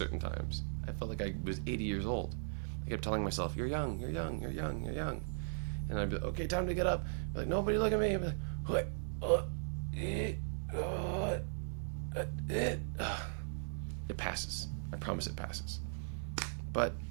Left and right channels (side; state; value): left; silent; digital silence